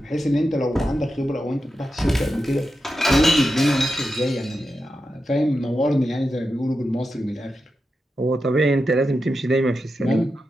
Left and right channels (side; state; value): both; normal; correlation 0.89